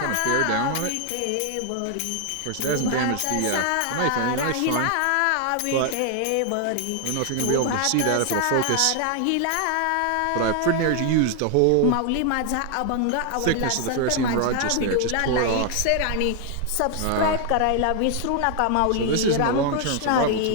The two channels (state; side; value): different; both; correlation 0.00